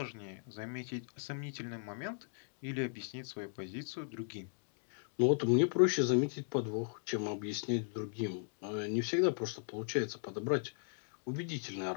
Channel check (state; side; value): silent; right; digital silence